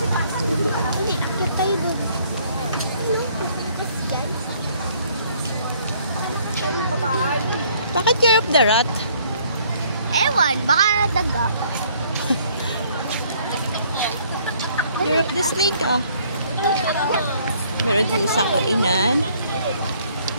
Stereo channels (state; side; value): inverted; both; correlation -0.62